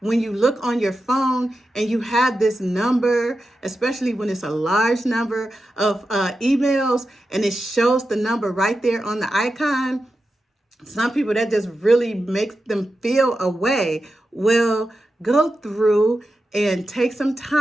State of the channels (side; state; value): both; normal; correlation 0.91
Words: you look on your phone and you have this number, especially when it's a large number of emails and it shows the number right there on the icon, some people that just really makes them feel a way. Well, go through and take some